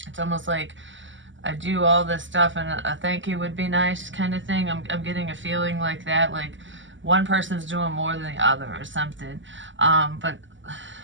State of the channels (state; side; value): late; left; 0.55 ms